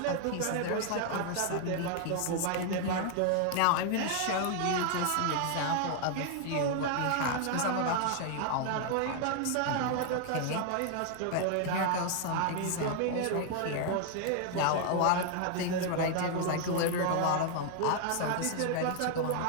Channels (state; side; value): different; both; correlation 0.00